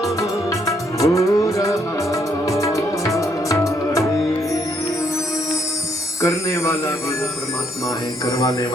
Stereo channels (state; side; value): normal; both; correlation 0.72